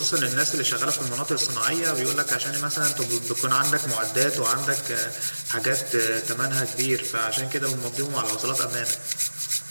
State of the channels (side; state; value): both; inverted; correlation -1.00